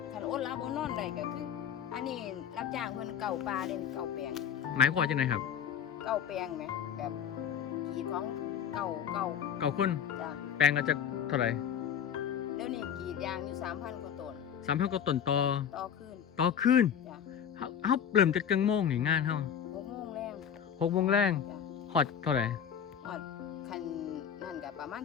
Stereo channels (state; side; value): quieter; right; 8.5 dB